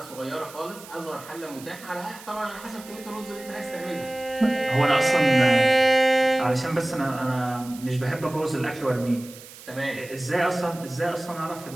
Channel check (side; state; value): right; noise; hiss, 18 dB below the sound